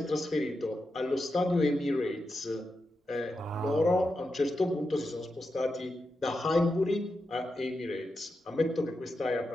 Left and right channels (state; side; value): normal; both; correlation 0.88